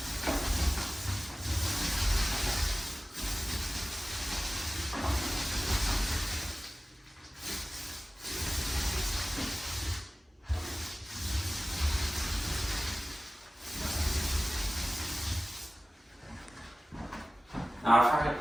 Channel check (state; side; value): normal; both; correlation 0.97